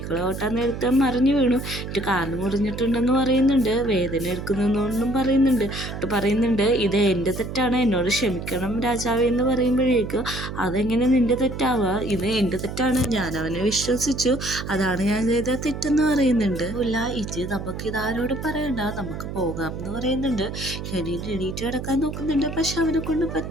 ഓട്ടാൻ നേരത്തെ മറിഞ്ഞു വീണു, എന്നിട്ട് കാല് മുറിഞ്ഞിട്ടുണ്ടെന്ന് പറയുന്നുണ്ട്. വേദന എടുക്കുന്നൊന്നും പറയുന്നുണ്ട് ഇത് എൻ്റെ തെറ്റാണ്, എന്നോട് ക്ഷമിക്കണം രാജാവേ എന്ന് പറയുമ്പോഴേക്കും അതെങ്ങനെ നിൻ്റെ തെറ്റാവുക, ഇത് എൻ്റെ തെറ്റാണ്, ഞാൻ അവനെ വിശ്വസിച്ചു, അതാണ് ഞാൻ ചെയ്ത തെറ്റെന്ന് പറയുന്നുണ്ട്. ഇല്ല ഇത് നമുക്ക് ഇതാരോട് പറയണ്ട, നമുക്ക് പോകാം എന്ന് പറയുന്നുണ്ട്. കെനിൻ എണീറ്റ് കിടക്കാൻ നോക്കുന്നുണ്ട്. പക്ഷെ അവനെ കൊണ്ട്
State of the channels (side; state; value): right; noise; hum, 7 dB below the sound